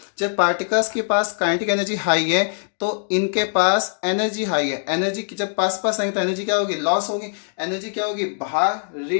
जब पार्टिकल्स के पास काइनेटिक एनर्जी हाई है तो इनके पास एनर्जी हाई है। एनर्जी की जब पास पास आएंगे तो एनर्जी क्या होगी? लॉस होगी। एनर्जी क्या होगी? बाहर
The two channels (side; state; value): right; silent; digital silence